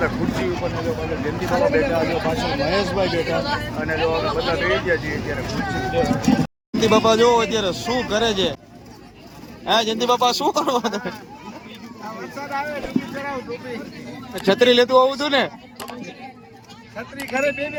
હતા ખુરશી ઉપર ને જો પાછળ જયંતિ બાપા બેઠા, જો પાછળ મહેશભાઈ બેઠા અને જો અમે બધા બેસી ગયા છીએ અત્યારે ખુરશી ઉપર. જયંતિ બાપા જો અત્યારે શું કરે છે? હા જયંતિ બાપા શું કરો તમે? વરસાદ આવે ટોપી કરાવ ટોપી. છત્રી લેતું આવું હતું ને? છત્રી ઘરે બે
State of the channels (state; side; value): identical; both; correlation 1.00